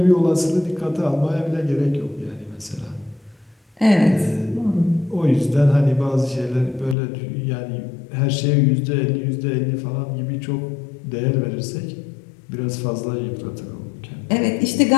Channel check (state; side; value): drops out; right; at 7.0 s